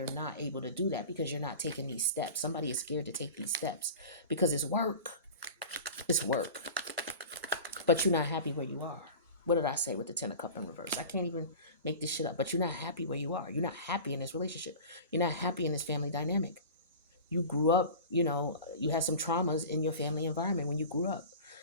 not able to do that, because you're not taking these steps. Somebody is scared to take these steps because it's work. It's work. But you're not happy where you are. What did I say with the Ten of Cups in reverse? I can't even make this shit up. But you're not happy where you are. You're not happy in this relationship. You're not happy in this family dynamic. You grew up, you had some traumas in your family environment when you grew up.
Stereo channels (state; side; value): inverted; both; correlation -0.36